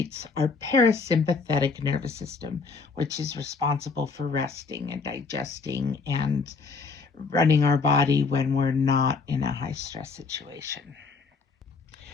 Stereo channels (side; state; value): right; quieter; 4.6 dB